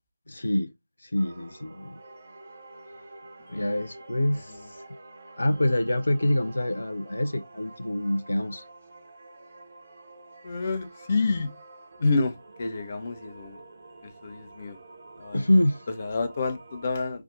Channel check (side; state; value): both; inverted; correlation -0.95